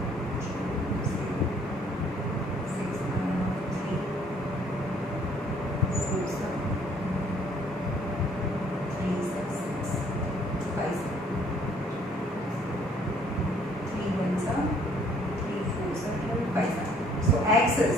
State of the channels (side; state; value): both; normal; correlation 0.61